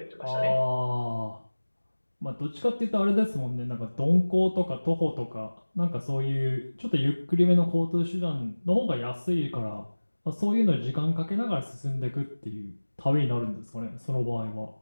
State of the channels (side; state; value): both; inverted; correlation -1.00